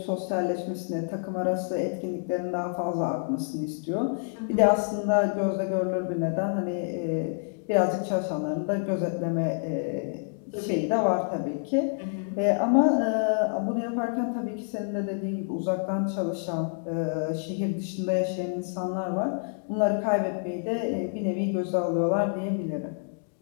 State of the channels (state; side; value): silent; right; digital silence